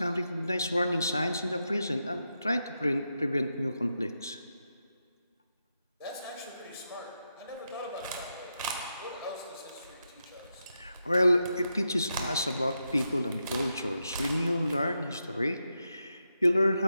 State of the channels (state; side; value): inverted; both; correlation -0.86